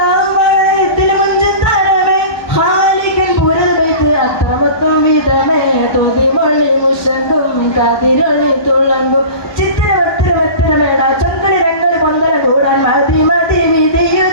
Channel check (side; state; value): right; late; 1.2 ms